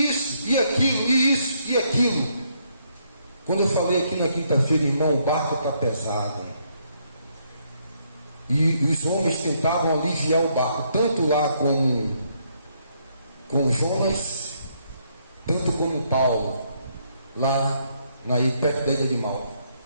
isso, e aquilo, e isso, e aquilo. Quando eu falei aqui na quinta-feira, irmão, o barco está pesado. E os homens tentavam aliviar o barco, tanto lá com Jonas, tanto como Paulo, lá perto da ilha de Malta.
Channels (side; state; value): both; inverted; correlation -0.72